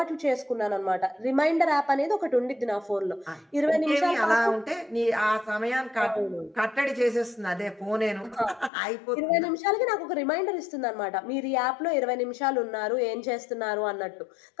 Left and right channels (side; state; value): right; drops out; at 8.7 s